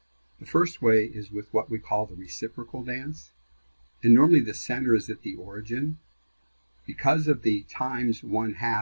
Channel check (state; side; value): inverted; both; correlation -1.00